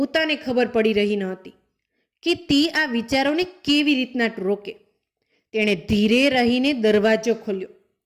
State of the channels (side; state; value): both; identical; correlation 1.00